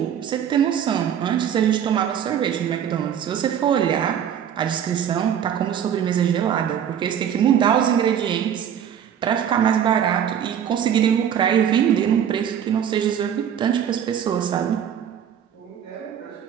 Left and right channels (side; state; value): left; quieter; 9.0 dB